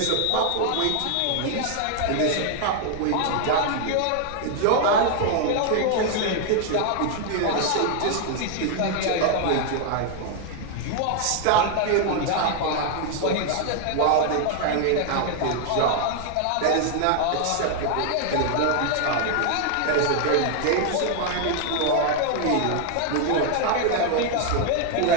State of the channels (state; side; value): different; both; correlation 0.00